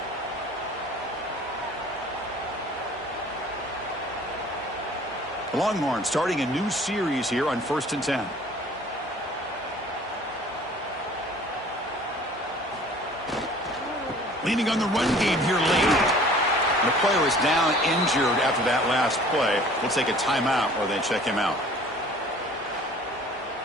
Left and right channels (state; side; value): normal; both; correlation 0.50